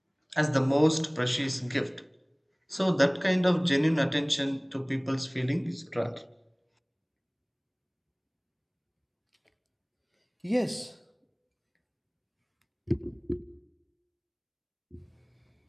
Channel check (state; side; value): identical; both; correlation 1.00